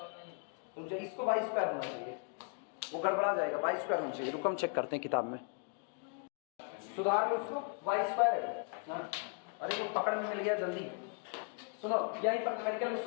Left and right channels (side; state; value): right; quieter; 38.7 dB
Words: तो जो इसको y स्क्वायर होना चाहिए, वो गड़बड़ा जाएगा, y स्क्वायर होना चाहिए। रुको हम चेक करते हैं किताब में, सुधार लो उसको, y स्क्वायर है ना। अरे वो पकड़ में मिल गया जल्दी, सुनो यहीं पर न्यूमेरिकल में